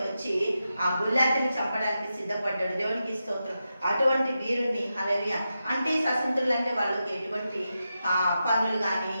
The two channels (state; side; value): inverted; both; correlation -0.89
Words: వచ్చి ఆ గుల్లాతిని చంపడానికి సిద్ధపడ్డాడు. దేవునికి స్తోత్రం. అటువంటి వీరుణ్ణి, హల్లెలూయా. అంటే స్వతంత్రులు అంటే వాళ్ళకి ఎటువంటి పనులు కానీ